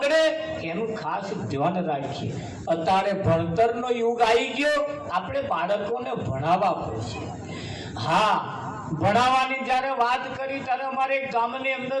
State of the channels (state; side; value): identical; both; correlation 1.00